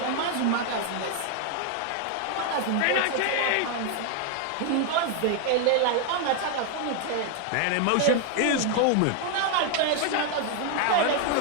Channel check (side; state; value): both; different; correlation 0.00